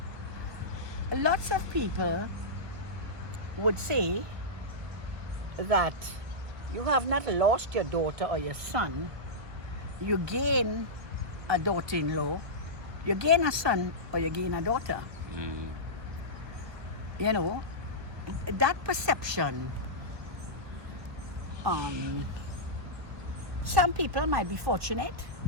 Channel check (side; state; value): left; late; 1.2 ms